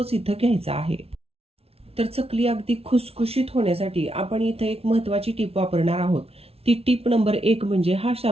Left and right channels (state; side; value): late; left; 0.29 ms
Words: इथं घ्यायचा आहे। तर चकली अगदी खुसखुशीत होण्यासाठी आपण इथं एक महत्त्वाची टीप वापरणार आहोत। ती टीप नंबर 1 म्हणजे हा